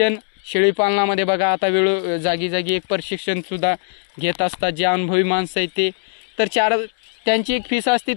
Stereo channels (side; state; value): right; silent; digital silence